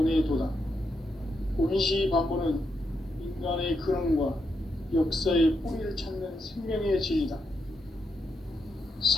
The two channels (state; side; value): normal; both; correlation 0.82